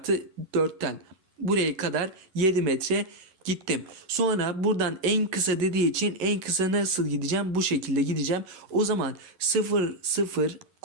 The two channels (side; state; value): left; late; 11 ms